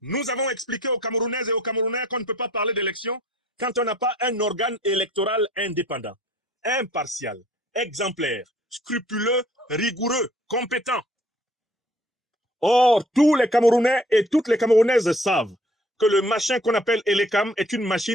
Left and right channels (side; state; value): both; normal; correlation 0.57